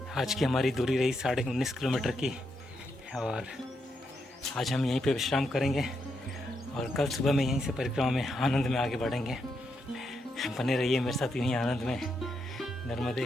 आज की हमारी दूरी रही 19.5 किलोमीटर की और आज हम यहीं पे विश्राम करेंगे और कल सुबह में यहीं से परिक्रमा में आनंद में आगे बढ़ेंगे। बने रहिए मेरे साथ यहीं आनंद में। नर्मदे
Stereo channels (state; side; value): normal; both; correlation 0.81